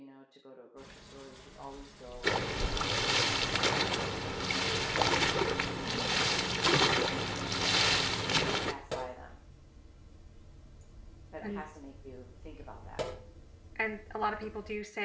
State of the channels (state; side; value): identical; both; correlation 1.00